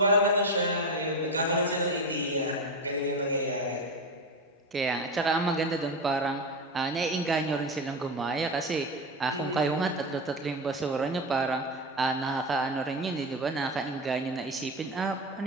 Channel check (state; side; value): normal; both; correlation 0.19